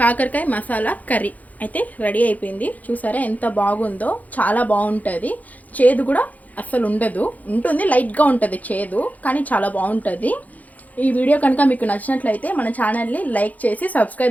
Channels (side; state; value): right; late; 0.077 ms